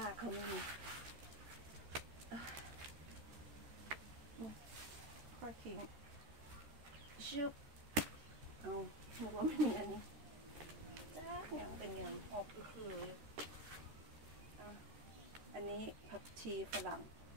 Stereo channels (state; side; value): late; left; 13 ms